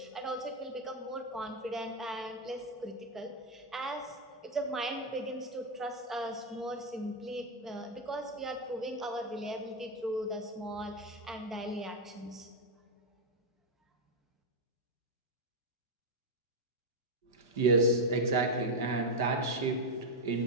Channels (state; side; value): normal; both; correlation 0.02